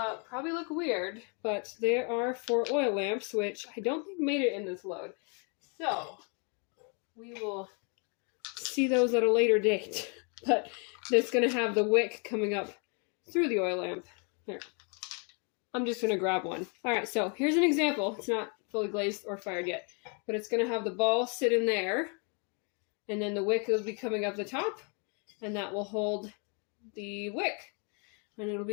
probably look weird, but they are for oil lamps, which I don't think made it in this load. So we will see those at a later date. But it's going to have the wick coming up through the oil lamp. Here. I'm just going to grab one. All right, so here's an example. It's not fully glazed or fired yet, but it's going to have the ball sit in there, And then the wick will be coming up the top, and that will hold the wick. And it'll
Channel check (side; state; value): right; quieter; 37.0 dB